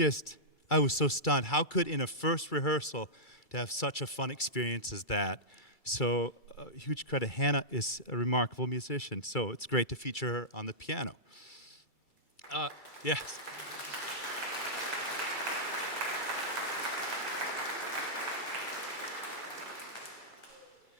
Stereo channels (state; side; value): late; right; 2.3 ms